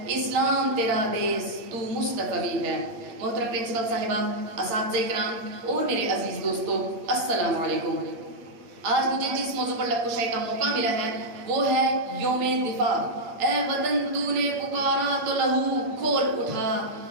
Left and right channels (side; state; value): left; late; 9.0 ms